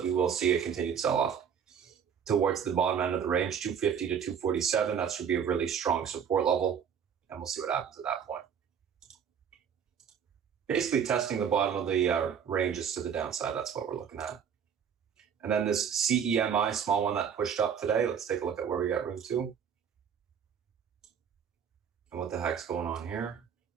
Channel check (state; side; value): quieter; left; 7.7 dB